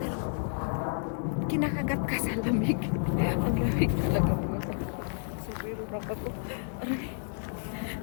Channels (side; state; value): right; silent; digital silence